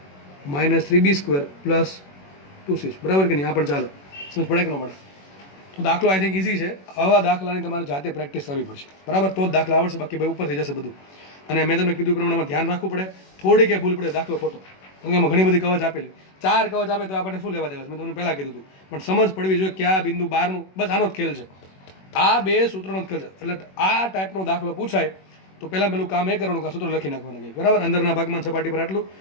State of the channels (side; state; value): right; late; 21 ms